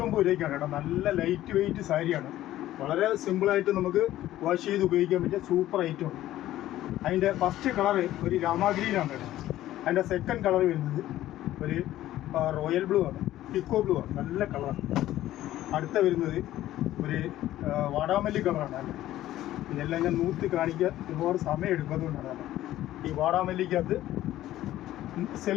രൂപയ്ക്കാണ് കേട്ടോ. നല്ല ലൈറ്റ് വെയിറ്റ് സാരിയാണ്. വളരെ സിമ്പിളായിട്ട് നമുക്ക് വാഷ് ചെയ്ത് ഉപയോഗിക്കാൻ പറ്റിയ സൂപ്പർ ഐറ്റമാണ്. അതിൻ്റെ ഫസ്റ്റ് കളറ് ഒരു രാമാഗ്രീനാണ് കേട്ടോ. അതിൻ്റെ സെക്കൻഡ് കളർ വരുന്നത് ഒരു റോയൽ ബ്ലൂ ആണ്, പിക്കോ ബ്ലൂ ആണ്. നല്ല കളറാണ്. അടുത്ത വരുന്നത് ഒരു വാടാമല്ലി കളറാണ് അല്ലേ. ഇതെല്ലാം ഞാൻ നൂത്തി കാണിക്കാൻ ഒരുപാട് സമയം എടുക്കുന്നതുകൊണ്ടാണ്. ഈ വാടാമല്ലിക്കകത്ത്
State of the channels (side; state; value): right; quieter; 14.1 dB